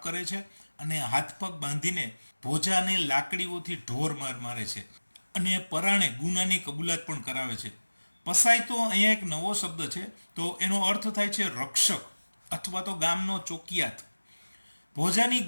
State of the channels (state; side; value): inverted; both; correlation -1.00